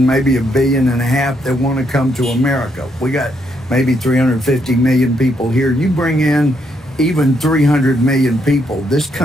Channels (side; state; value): both; normal; correlation 0.76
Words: maybe 1.5 billion that want to come to America. We got maybe 350 million people here. You bring in even 300 million people, this